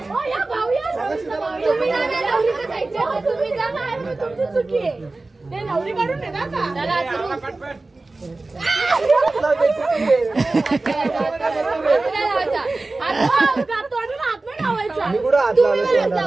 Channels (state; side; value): quieter; left; 3.2 dB